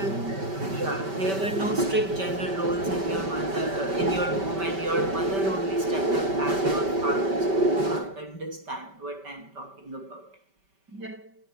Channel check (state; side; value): late; left; 5.2 ms